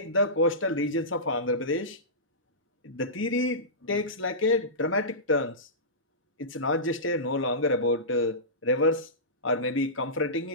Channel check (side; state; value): both; normal; correlation -0.19